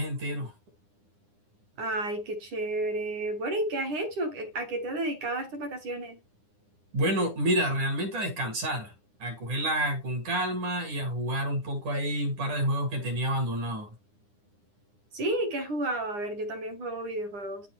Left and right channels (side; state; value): left; late; 9.8 ms